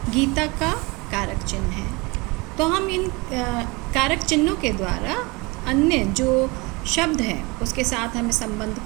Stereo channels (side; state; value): left; quieter; 26.0 dB